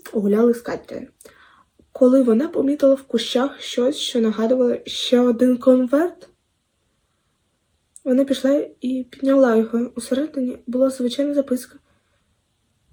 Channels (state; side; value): identical; both; correlation 1.00